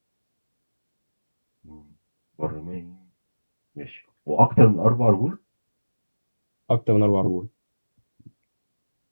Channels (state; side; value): inverted; both; correlation -1.00